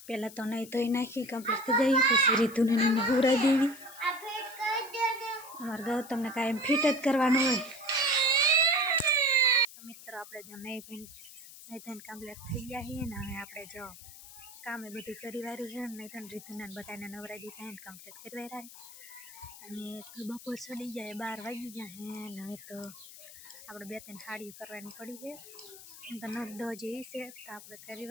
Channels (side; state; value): left; noise; hiss, 16 dB below the sound